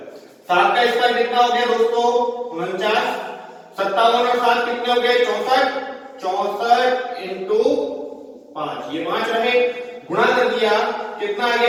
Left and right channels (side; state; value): both; identical; correlation 1.00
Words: 7 का स्क्वायर कितना हो गया दोस्तों, 49। 57 और 7 कितने हो गए, 64। 64 इंटू 5, ये 5 रहे, गुणा कर दिया, कितना आ